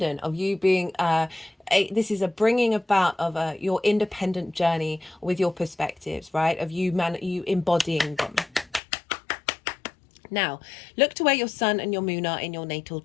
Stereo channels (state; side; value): drops out; right; at 8.8 s